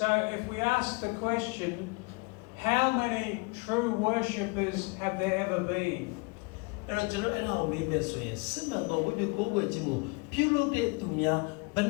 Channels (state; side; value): quieter; right; 29.2 dB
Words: if we ask the question, how many true worshippers have there ever been? အဲ့တော့ကျွန်တော်အဲ့ဒါကိုမေးမယ်ဆိုရင်စစ်မှန်သောဝိညာဉ်ကိုးကွယ်ခြင်းကိုပြုလုပ်တဲ့သူများဘယ်